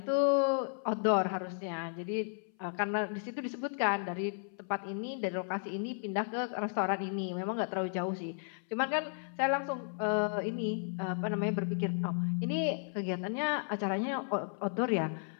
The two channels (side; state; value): right; silent; 55 dB below the other